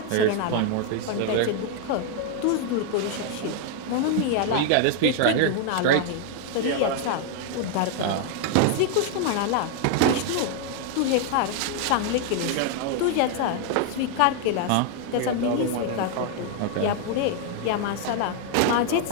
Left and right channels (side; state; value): both; different; correlation 0.00